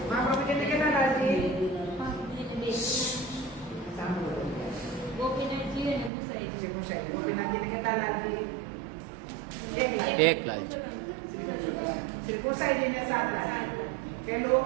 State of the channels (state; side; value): drops out; left; at 6.1 s